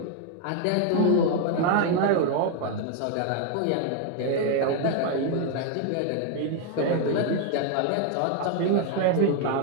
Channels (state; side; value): different; both; correlation 0.00